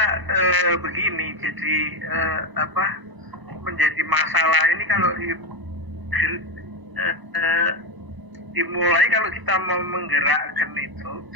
begini, jadi menjadi masalah ini kalau dimulai kalau kita mau menggerakkan itu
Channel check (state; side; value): late; left; 1.0 ms